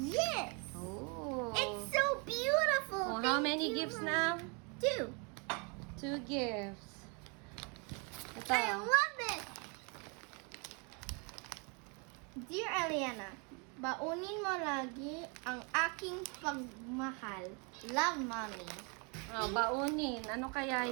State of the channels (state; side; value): quieter; left; 34.0 dB